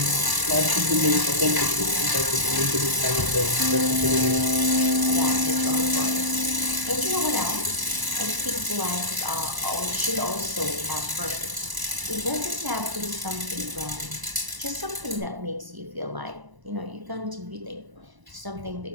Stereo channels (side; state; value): left; late; 1.0 ms